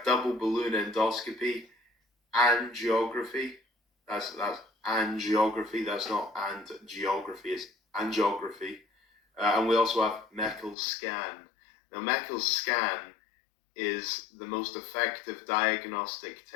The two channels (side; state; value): right; drops out; at 10.8 s